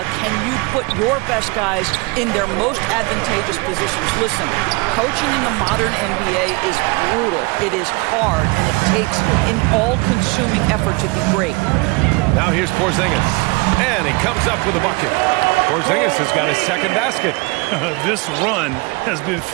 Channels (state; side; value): quieter; left; 26.9 dB